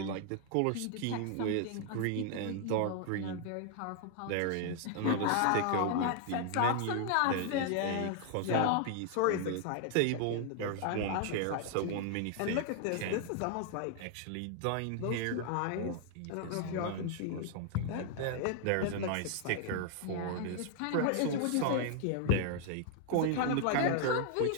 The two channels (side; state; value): both; different; correlation 0.00